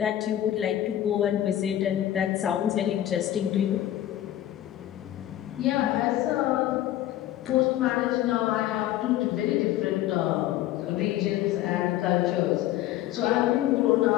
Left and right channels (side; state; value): right; quieter; 13.1 dB